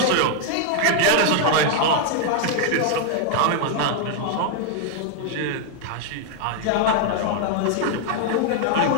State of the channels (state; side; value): different; both; correlation 0.00